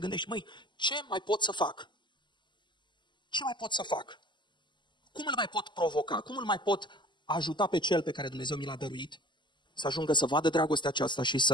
măi, ce mai pot să fac? Ce mai pot să fac? Cum îl mai pot provoca? Cum îl mai pot ajuta pe cel pe care Dumnezeu mi l-a dăruit să ajungă să vadă dragostea aceasta și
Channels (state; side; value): late; right; 0.22 ms